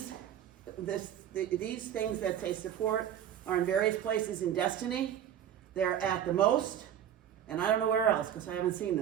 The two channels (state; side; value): quieter; left; 10.0 dB